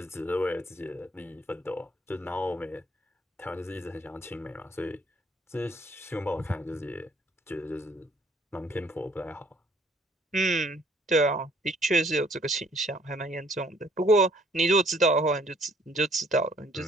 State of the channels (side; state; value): both; normal; correlation 0.62